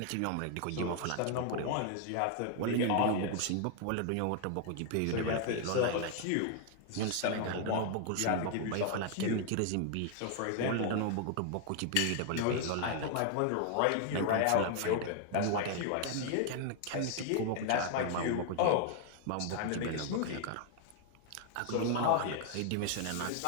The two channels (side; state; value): both; different; correlation 0.00